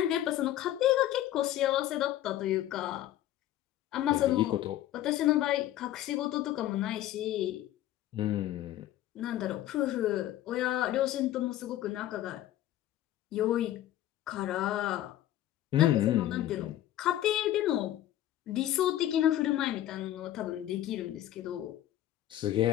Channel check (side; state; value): right; quieter; 13.3 dB